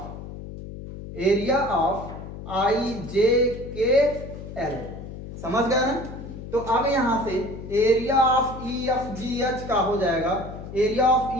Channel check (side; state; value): left; noise; hum, 11 dB below the sound